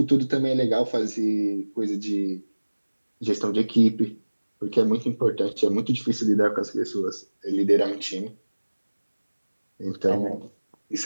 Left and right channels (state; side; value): inverted; both; correlation -1.00